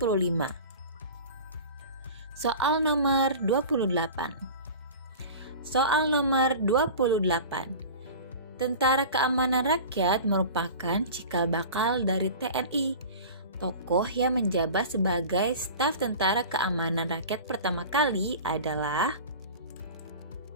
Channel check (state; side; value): inverted; both; correlation -0.36